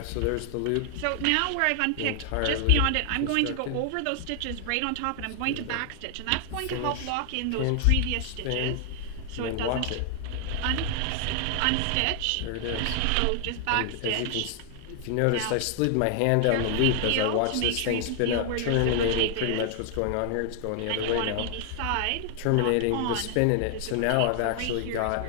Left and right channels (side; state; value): both; different; correlation 0.00